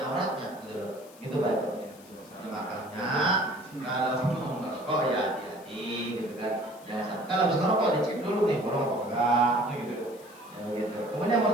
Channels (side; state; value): left; noise; hiss, 23 dB below the sound